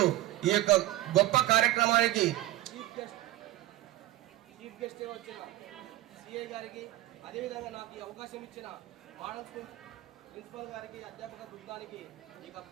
ఈ యొక్క గొప్ప కార్యక్రమానికి చీఫ్ గెస్ట్ వచ్చిన సిఐ గారికి, అదేవిధంగా నాకు ఈ అవకాశం ఇచ్చిన మోడల్ స్కూల్ ప్రిన్సిపల్ గారికి, అధ్యాపక బృందానికి, ఇక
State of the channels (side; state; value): left; quieter; 15.9 dB